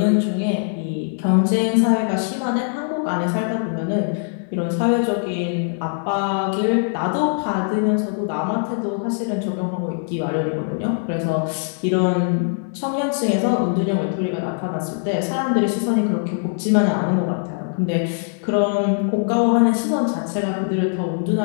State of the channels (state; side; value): silent; right; digital silence